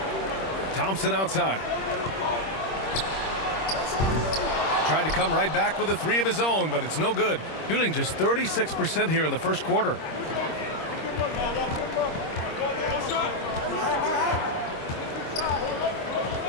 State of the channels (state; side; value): late; right; 26 ms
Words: Thompson outside. Tried to come right back with a three of his own, but it's no good. Shooting just 36% here in the first quarter.